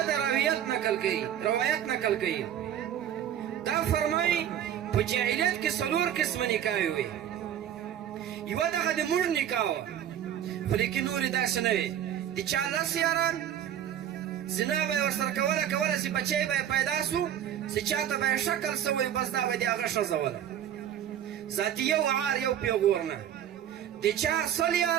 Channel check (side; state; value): left; quieter; 10.3 dB